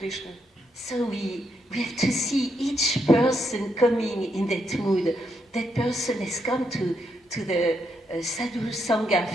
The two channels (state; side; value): normal; both; correlation 0.79